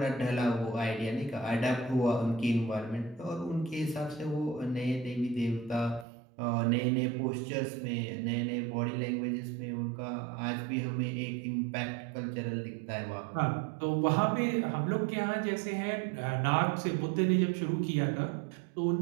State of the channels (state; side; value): drops out; left; at 6.1 s